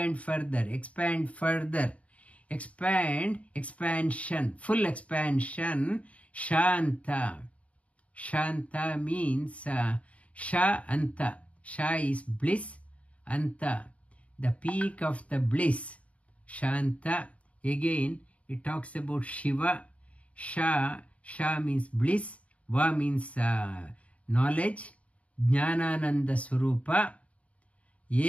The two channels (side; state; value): right; late; 0.066 ms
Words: further, expansion, full expansion. Shanta. Shanta means sha anta. Sha is bliss, anta, the peak of the bliss. Shanta. Again it talks about Shiva. Sha means bliss, va means knowledge, jnanananda swarupa.